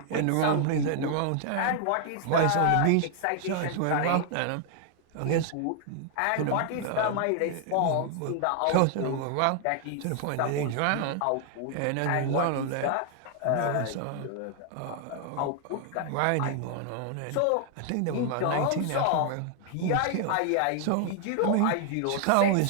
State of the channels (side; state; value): both; different; correlation 0.00